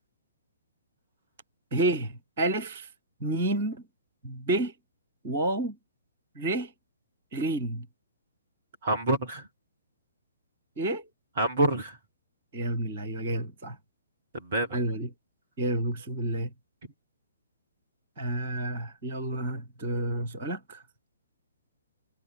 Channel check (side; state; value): both; inverted; correlation -0.32